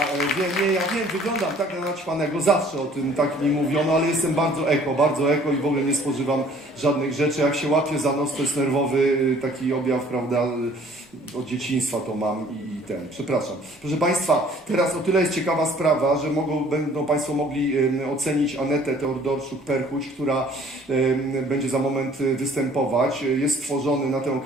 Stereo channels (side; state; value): both; normal; correlation 0.55